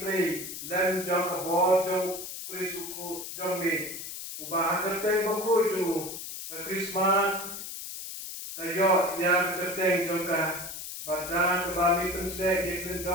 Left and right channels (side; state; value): left; noise; hiss, 8 dB below the sound